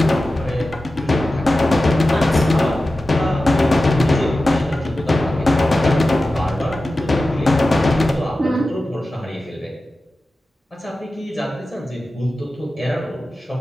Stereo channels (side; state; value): both; normal; correlation 0.94